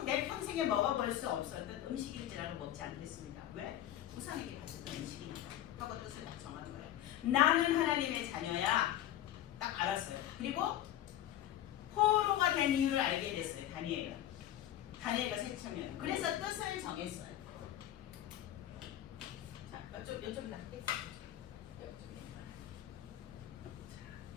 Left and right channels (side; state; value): right; quieter; 12.3 dB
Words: 내 평생에 먹어볼 수 없었던 음식인지라도 먹지 않겠습니다. 왜? 우상에게 바쳤던 음식이니까 하고 뜻을 딱 정하는 거예요. 나는 하나님의 자녀야. 딱 알았어요. 그리고 포로가 된 이유를 알게 됐어요. 다니엘과 세 청년은. 그래서 뜻을 정했어요. 자, 이쪽이다.